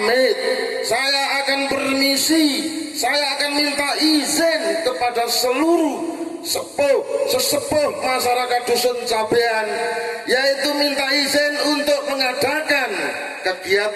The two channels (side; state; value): both; identical; correlation 1.00